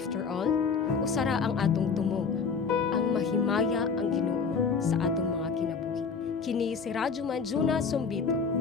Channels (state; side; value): quieter; right; 5.4 dB